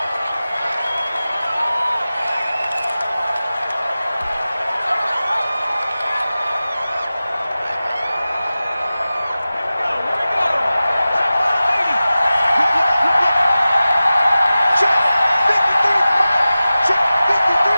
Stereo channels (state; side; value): inverted; both; correlation -0.96